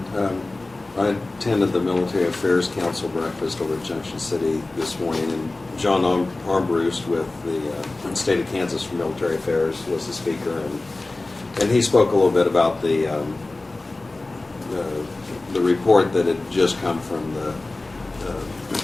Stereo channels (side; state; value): right; quieter; 3.1 dB